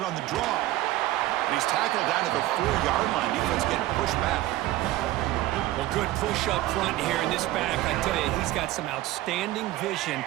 on the draw. And he's tackled down at the 4-yard line. Defense getting pushed back. Well, good push up front here in this back. I tell you, he's got some outstanding vision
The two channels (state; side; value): quieter; left; 16.1 dB